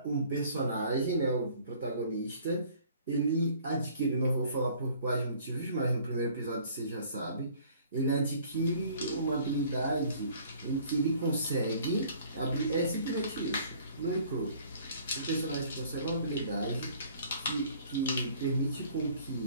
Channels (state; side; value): inverted; both; correlation -0.54